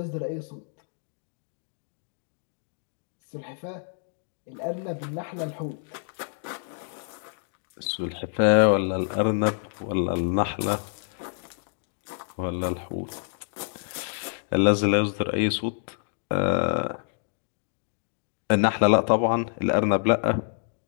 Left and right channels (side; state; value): right; silent; digital silence